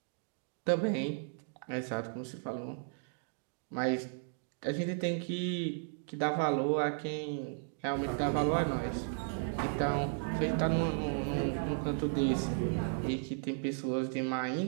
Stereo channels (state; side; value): silent; left; digital silence